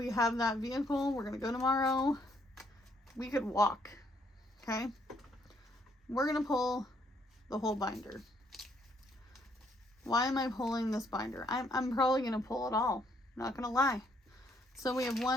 vehicle. We're gonna go tomorrow. We could walk. Okay, we're gonna pull the whole binder. Why am I pulling this binder? I'm probably gonna pull it all. Not gonna lie. So we have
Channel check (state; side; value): normal; both; correlation 0.69